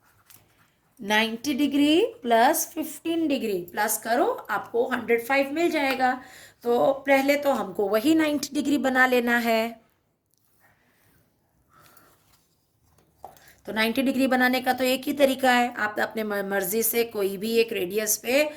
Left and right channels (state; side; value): identical; both; correlation 1.00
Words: 90 डिग्री प्लस 15 डिग्री प्लस करो, आपको 105 मिल जाएगा। तो पहले तो हमको वही 90 डिग्री बना लेना है। तो 90 डिग्री बनाने का तो एक ही तरीका है, आप अपने मर्जी से कोई भी एक रेडियस पे